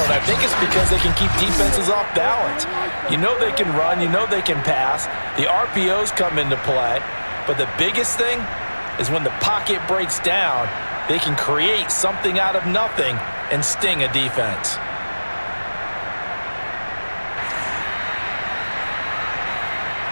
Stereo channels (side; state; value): both; inverted; correlation -1.00